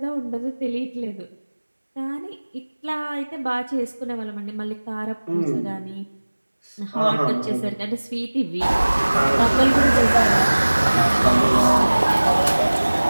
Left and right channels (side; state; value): both; inverted; correlation -1.00